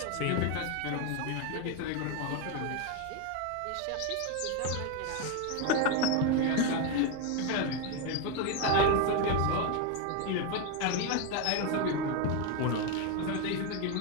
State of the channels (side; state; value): both; different; correlation 0.02